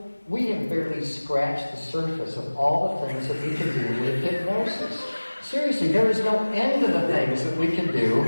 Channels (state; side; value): inverted; both; correlation -1.00